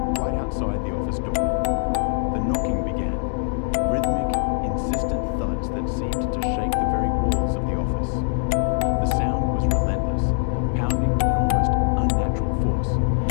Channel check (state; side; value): silent; right; 63 dB below the other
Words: right outside the office door. The knocking began, rhythmic, insistent thuds that seemed to shake the very walls of the office. The sound was relentless, pounding with an almost unnatural force,